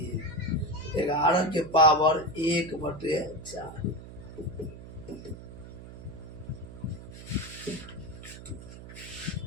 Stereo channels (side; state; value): right; noise; hum, 14 dB below the sound